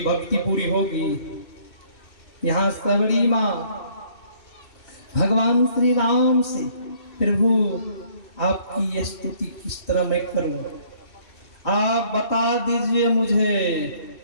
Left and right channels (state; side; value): late; right; 2.6 ms